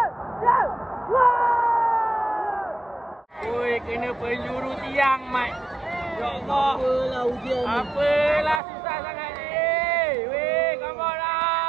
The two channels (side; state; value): left; drops out; at 8.6 s